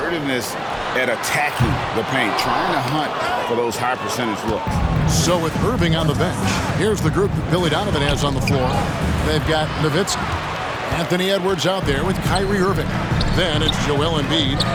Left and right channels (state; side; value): identical; both; correlation 1.00